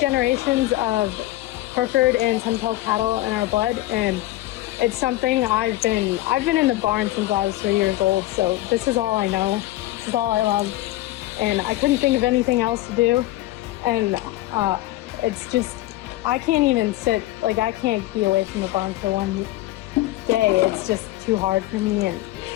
of Hereford and Sunpelt cattle in our blood, and it's something I've been in the barn since I was 3 years old. So this is all I know. This is all I love, and I couldn't think of anything else to do. And it's just, I can't even sit, like I can't be away from the barn for one day. It's just too hard for me. And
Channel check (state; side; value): quieter; right; 16.8 dB